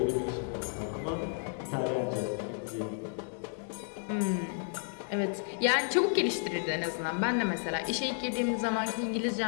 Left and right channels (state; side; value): silent; right; 56 dB below the other